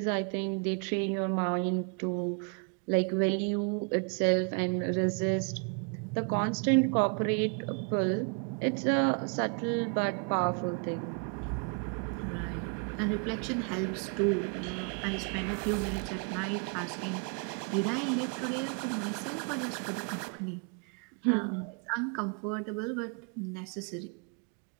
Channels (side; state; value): left; quieter; 38.4 dB